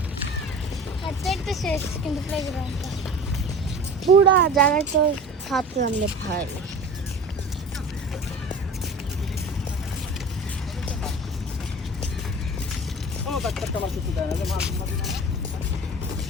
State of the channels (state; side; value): normal; both; correlation 0.37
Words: হাঁটতে শেষ কিন্তু প্লেগ্রাউন্ডটা পুরা জায়গায় তো হাত নামলে ভাই ও বাচ্চাটা আমার কিছু দেয় না যে মাছ